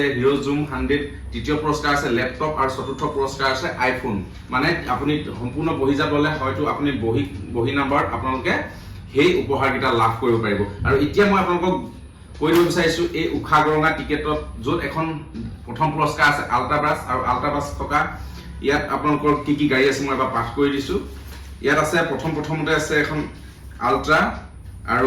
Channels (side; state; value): both; identical; correlation 1.00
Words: হিৰো জুম 100, তৃতীয় পুৰস্কাৰ আছে লেপটপ আৰু চতুৰ্থ পুৰস্কাৰ আছে আইফোন। মানে আপুনি সম্পূৰ্ণ বহিজাপ ল'লে হয়তো আপুনি বহি নাম্বাৰত আপোনালোকে সেই উপহাৰকেইটা লাভ কৰিব পাৰিব। আৰু এতিয়া মই আপোনালোকক কৈ দিব বিচাৰিছো এই উষাগৰঙা টিকেটত য'ত এখন প্ৰথম পুৰস্কাৰ আছে আল্ট্ৰাবাছ আৰু আল্ট্ৰাবাছ থকা ইয়াত আপোনালোকৰ কি গাড়ী আছে মই এবাৰ পাঠ কৰি দিছো। ইয়াত আছে প্ৰথমতে আছে এখন আল্ট্ৰা আৰু